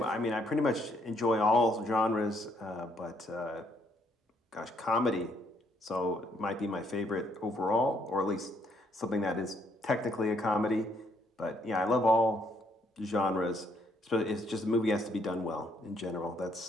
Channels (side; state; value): both; normal; correlation 0.70